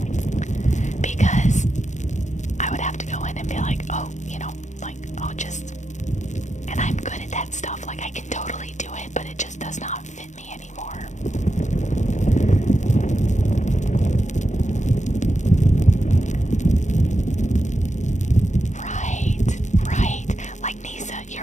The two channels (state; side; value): late; right; 0.35 ms